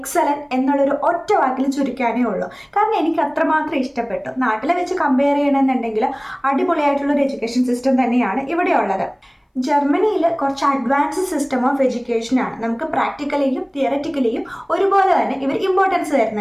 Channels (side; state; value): both; identical; correlation 1.00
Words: എന്നുള്ളൊരു ഒറ്റ വാക്കിൽ ചുരുക്കാനേ ഉള്ളൂ. കാരണം എനിക്ക് അത്രമാത്രം ഇഷ്ടപ്പെട്ടു. നാട്ടിലെ വെച്ച് കമ്പയർ ചെയ്യണമെന്നുണ്ടെങ്കിൽ അടിപൊളിയായിട്ടുള്ളൊരു എഡ്യൂക്കേഷൻ സിസ്റ്റം തന്നെയാണ് ഇവിടെ ഉള്ളത്. ജർമ്മനിയിൽ കുറച്ച് അഡ്വാൻസ് സിസ്റ്റം ഓഫ് എഡ്യൂക്കേഷനാണ്. നമുക്ക് പ്രാക്ടിക്കലിയും തിയററ്റിക്കലിയും ഒരുപോലെ തന്നെ ഇവർ ഇമ്പോർട്ടൻസ്